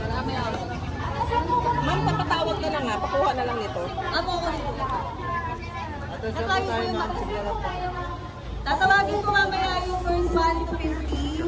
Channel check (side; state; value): both; identical; correlation 1.00